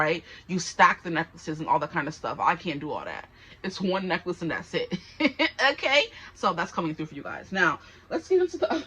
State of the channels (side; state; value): both; identical; correlation 1.00